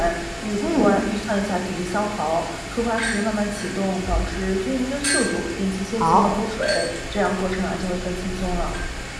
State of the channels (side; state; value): both; identical; correlation 1.00